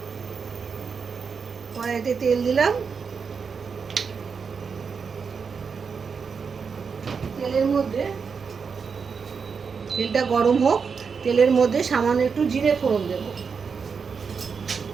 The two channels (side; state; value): left; quieter; 5.7 dB